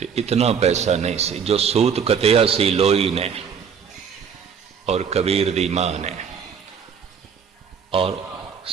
इतना पैसा नहीं सी, जो सूत कतिया सी लोई ने और कबीर दी मां ने, और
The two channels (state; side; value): quieter; left; 6.9 dB